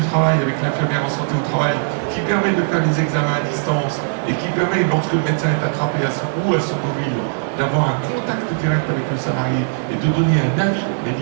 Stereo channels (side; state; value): left; silent; digital silence